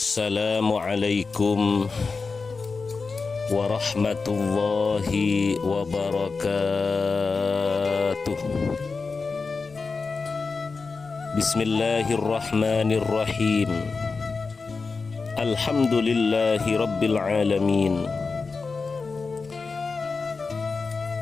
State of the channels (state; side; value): quieter; right; 4.4 dB